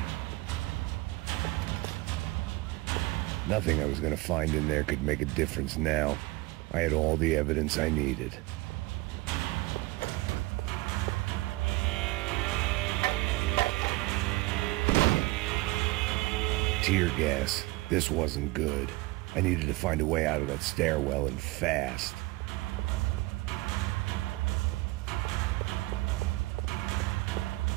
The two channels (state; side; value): quieter; left; 21.4 dB